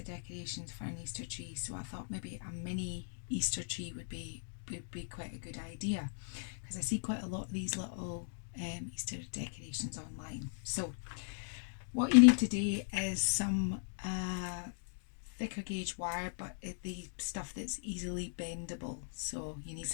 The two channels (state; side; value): silent; right; digital silence